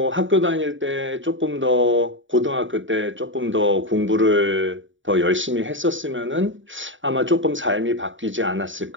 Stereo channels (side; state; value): left; late; 0.56 ms